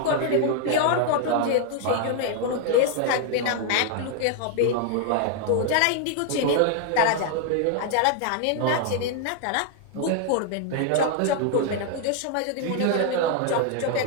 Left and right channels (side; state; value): both; different; correlation 0.00